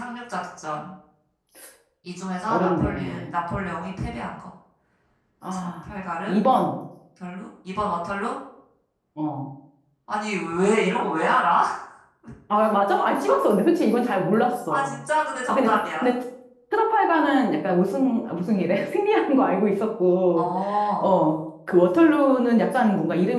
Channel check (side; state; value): both; identical; correlation 1.00